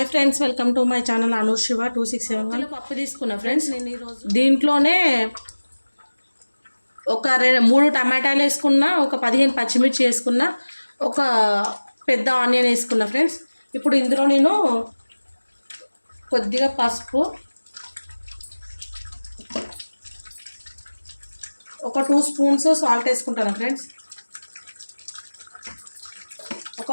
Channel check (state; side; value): inverted; both; correlation -1.00